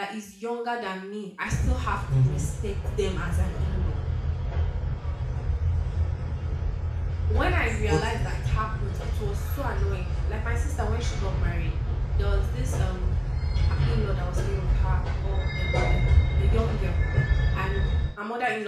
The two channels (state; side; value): identical; both; correlation 1.00